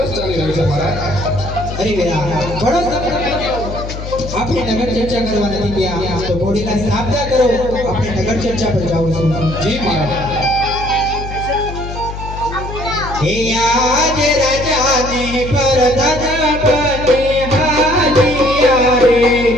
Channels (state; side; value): noise; left; hum, 8 dB below the sound